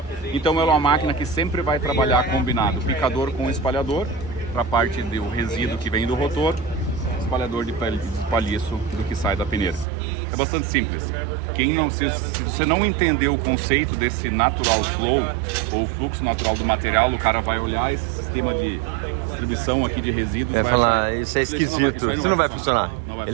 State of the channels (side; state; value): left; drops out; at 9.9 s